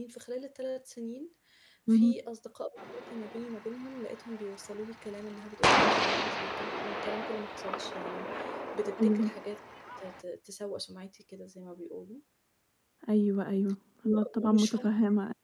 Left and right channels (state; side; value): identical; both; correlation 1.00